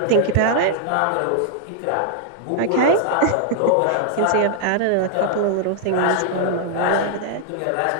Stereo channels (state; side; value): different; both; correlation -0.01